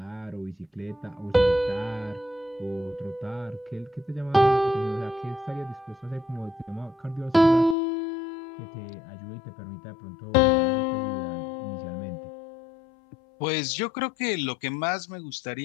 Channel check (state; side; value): drops out; right; at 7.8 s